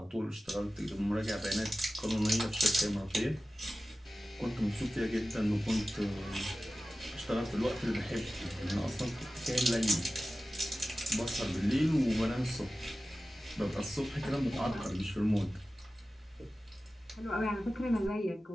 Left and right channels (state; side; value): normal; both; correlation 0.95